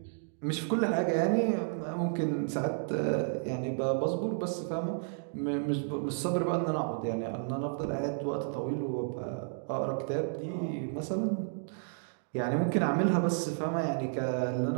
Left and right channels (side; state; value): left; silent; digital silence